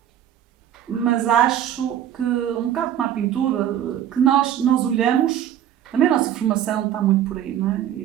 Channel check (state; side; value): quieter; left; 10.7 dB